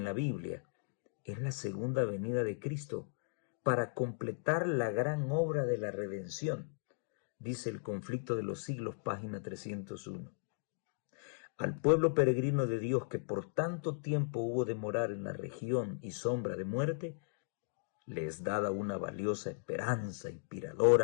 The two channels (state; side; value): silent; right; digital silence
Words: la Biblia es la segunda venida de Cristo para completar la gran obra de la redención, dice El conflicto de los siglos, página 301. Al pueblo peregrino de Dios que por tanto tiempo hubo de morar en la región y sombra de muerte, le es dada una valiosa esperanza